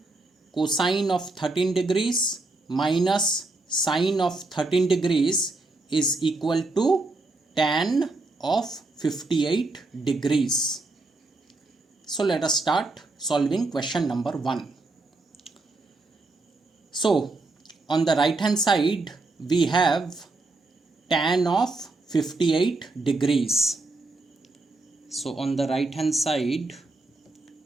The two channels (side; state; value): left; quieter; 3.2 dB